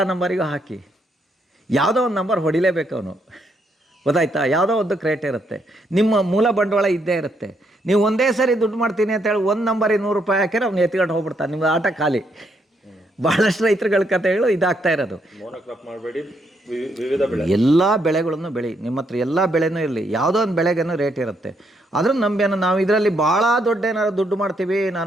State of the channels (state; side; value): normal; both; correlation 0.75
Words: ನಂಬರಿಗೂ ಹಾಕಿ. ಯಾವುದೋ ಒಂದು ನಂಬರ್ ಹೊಡಿಲೇಬೇಕು ಅವನು, ಗೊತ್ತಾಯ್ತಾ? ಯಾವುದೋ ಒಂದು ಕ್ರೇಟ್ ಇರುತ್ತೆ, ನಿಮ್ಮ ಮೂಲ ಬಂಡವಾಳ ಇದ್ದೇ ಇರುತ್ತೆ. ನೀವು ಒಂದೇ ಸರಿ ದುಡ್ಡು ಮಾಡ್ತೀನಿ ಅಂತೇಳಿ 1 ನಂಬರಿಗೆ 100 ರೂಪಾಯಿ ಹಾಕಿದ್ರೆ ಅವ್ನು ಎತ್ಕೊಂಡು ಹೋಗ್ಬಿಡ್ತಾನೆ, ನಿಮ್ಗೆ ಆಟ ಖಾಲಿ. ಭಾಳಷ್ಟು ರೈತರುಗಳ ಕಥೆಗಳು ಇದಾಗ್ತಾ ಇರೋದು. ಮೋನೋಕ್ರಾಪ್ ಮಾಡಬೇಡಿ, ವಿವಿಧ ಬೆಳೆ, ಎಲ್ಲ ಬೆಳೆಗಳನ್ನು ಬೆಳಿ, ನಿಮ್ಮ ಹತ್ರ ಎಲ್ಲ ಬೆಳೆನೂ ಇರಲಿ, ಯಾವುದೋ ಒಂದು ಬೆಳೆಗೇನೋ ರೇಟ್ ಇರುತ್ತೆ. ಅದ್ರ ನಂಬೇನೋ ನಾವು ಇದರಲ್ಲಿ ಭಾಳ ದೊಡ್ಡ ಏನಾದ್ರು ದುಡ್ಡು ಮಾಡ್ತೀವಿ,